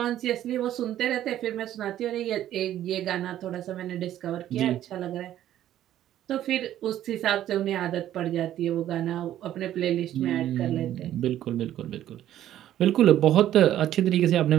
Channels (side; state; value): left; quieter; 12.2 dB